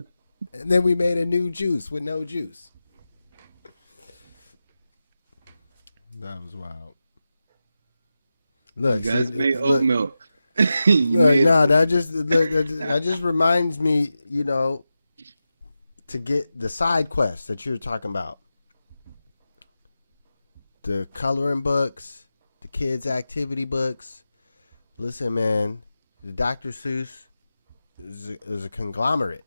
And then we made a new juice with no juice. That was wild. Look, You guys see, made oat look, milk. look, nah, that just reminds me, to get the side quests that you're talking about. The coloring books, the kids' activity books. Listen, man, the Dr. Seuss is a conglomerate.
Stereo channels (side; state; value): both; inverted; correlation -0.92